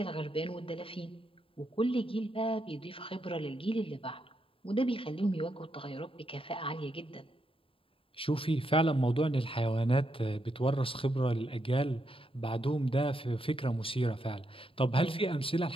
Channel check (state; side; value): late; right; 0.26 ms